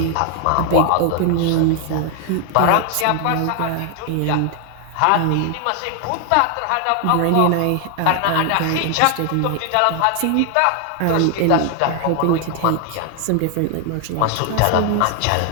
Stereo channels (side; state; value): both; different; correlation 0.00